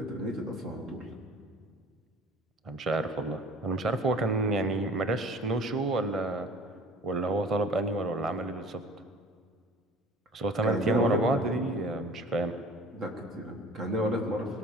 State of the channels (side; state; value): both; normal; correlation 0.46